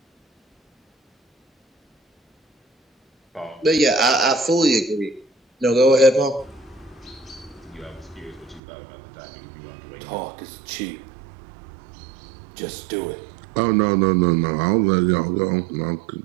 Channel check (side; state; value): left; drops out; at 8.6 s